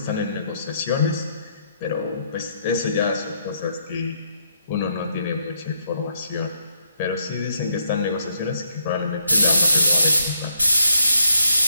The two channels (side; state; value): both; inverted; correlation -0.73